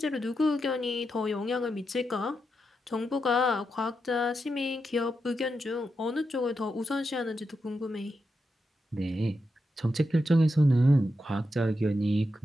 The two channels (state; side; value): normal; both; correlation 0.86